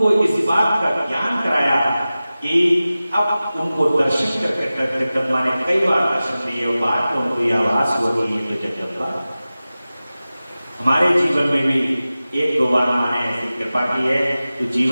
इस बात का ज्ञान कराया कि अब उनको दर्शन करके जगदम्बा ने कई बार दर्शन दिए और बाद में उनको यह आभास हुआ कि ये तो जगदम्बा। हमारे जीवन में भी एक दो बार मां ने ऐसी कृपा की है, तो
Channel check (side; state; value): both; inverted; correlation -0.96